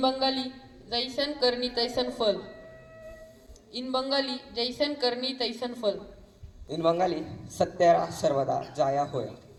Bengali, जैसन करनी तैसन फल. In Bengali, जैसन करनी तैसन फल. इन बंगाली सत्यरा सर्वदा जाया होय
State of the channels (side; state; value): both; identical; correlation 1.00